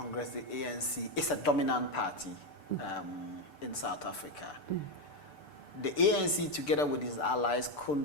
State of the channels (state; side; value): late; right; 6.8 ms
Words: the ANC, is a dominant party in South Africa. The ANC, together with its allies,